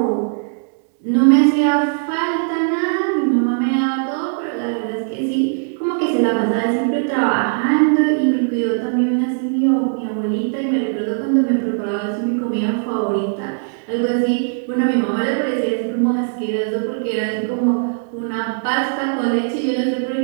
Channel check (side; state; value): left; silent; digital silence